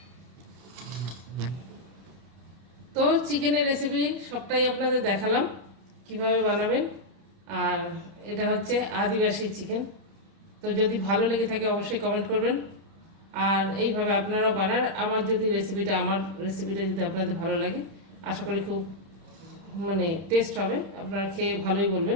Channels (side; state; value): left; late; 30 ms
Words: তো চিকেনের রেসিপি সবটাই আপনাদের দেখালাম কিভাবে বানাবেন। আর এটা হচ্ছে আদিবাসী চিকেন। তো যদি ভালো লেগে থাকে অবশ্যই কমেন্ট করবেন। আর এইভাবে আপনারা বানান। আমার রেসিপিটা যদি আপনাদের ভালো লাগে, আশা করি খুব টেস্ট হবে, আপনারা খেয়ে ভালোই